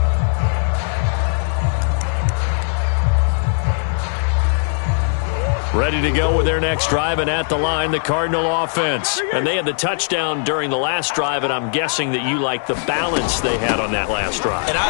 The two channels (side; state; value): right; silent; digital silence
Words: Ready to go with their next drive, and at the line, the Cardinal offense. And they had the touchdown during the last drive, and I'm guessing that you like the balance they had on that last drive. And